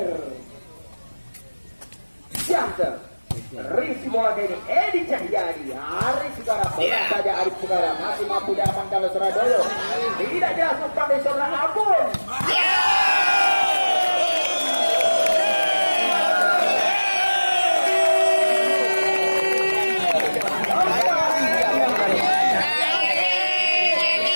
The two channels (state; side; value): inverted; both; correlation -1.00